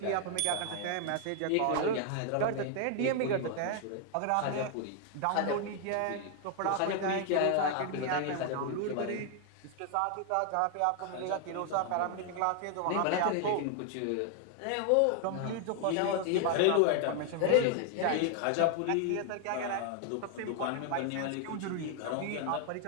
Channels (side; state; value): both; different; correlation 0.00